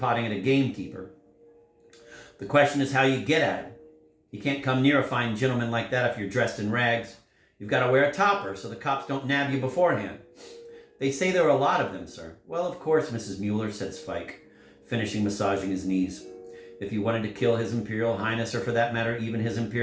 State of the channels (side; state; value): both; identical; correlation 1.00